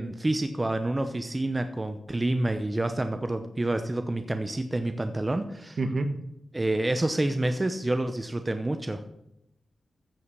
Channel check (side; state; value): both; normal; correlation 0.98